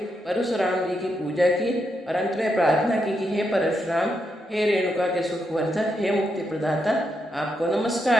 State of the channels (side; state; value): both; normal; correlation 0.82